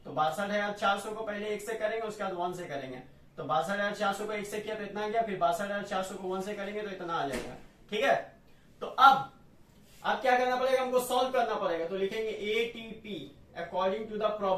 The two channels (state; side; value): identical; both; correlation 1.00